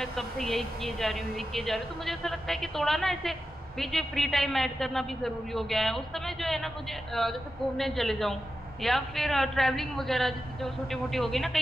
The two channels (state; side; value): normal; both; correlation 0.91